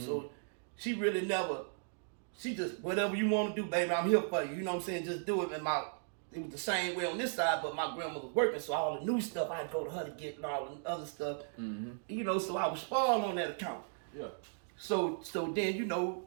she really never, she just, whatever you want to do, baby, I'm here for you. You know what I'm saying? Just do it. And it was the same way on this side, but my grandmother was working, so all the new stuff, I'd go to her to get and all the other stuff. You know, so I was spoiled on that account. Yeah. So then, you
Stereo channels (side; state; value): left; silent; digital silence